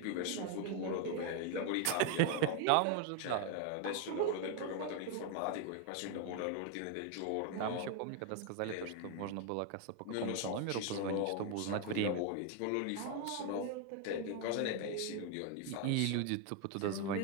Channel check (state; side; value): different; both; correlation 0.00